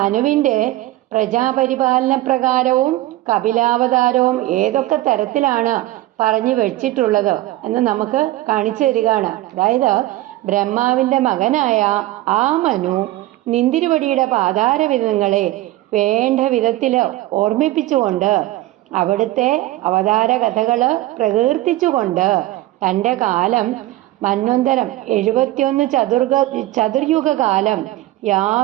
പ്രജാപരിപാലന പ്രകാരവും കപിലാവതാരവും ഏതൊക്കെ തരത്തിലാണ് പറഞ്ഞു വെച്ചിട്ടുള്ളത് എന്ന് നമുക്ക് കാണിച്ചു തരികയാണ്. അതായത് ബ്രഹ്മാവിന്റെ മകനായ ആ മനു നിന്തിരുവടിയുടെ പാദാരവിധങ്ങളെ വേണ്ട വിധത്തില് ഓർമ്മിപ്പിച്ചുകൊണ്ട് അവിടുത്തെ അവതാര കഥകള് പ്രകീർത്തിച്ചുകൊണ്ട് തൻ്റെ കാലം മന്വന്തരം 71 ചതുർയുഗകാലം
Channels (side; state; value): left; quieter; 16.6 dB